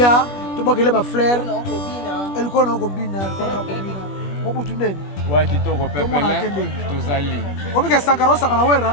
to bakele ba fleur elle kona ko bina mobutu nene ouais kitoko pepele tozali obi ka sankara sakana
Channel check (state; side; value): late; right; 21 ms